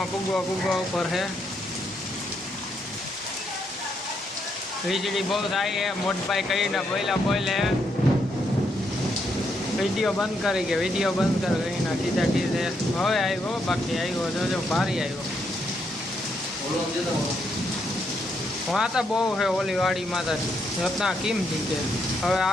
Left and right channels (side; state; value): both; normal; correlation 0.77